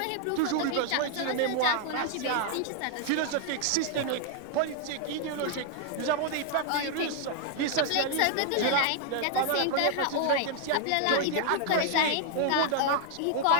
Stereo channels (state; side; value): different; both; correlation 0.00